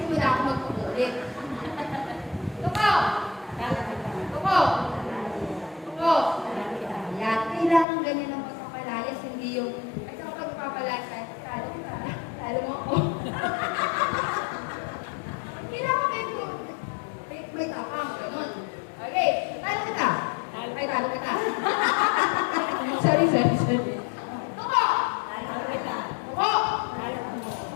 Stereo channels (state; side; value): drops out; right; at 7.9 s